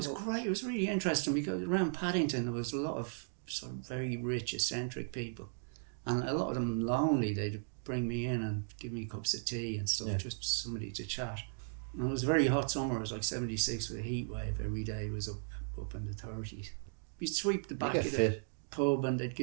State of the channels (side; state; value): left; silent; digital silence